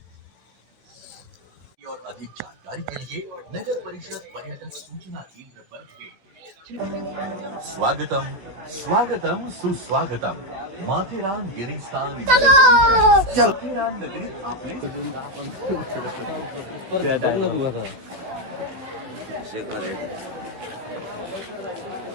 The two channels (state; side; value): late; left; 16 ms